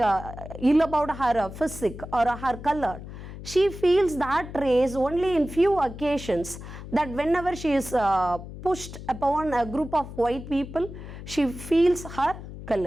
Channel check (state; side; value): noise; left; hum, 12 dB below the sound